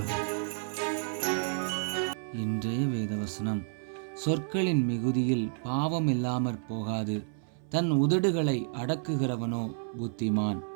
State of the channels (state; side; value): silent; left; 58 dB below the other